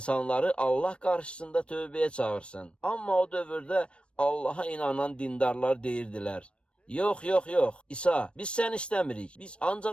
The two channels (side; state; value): right; late; 0.059 ms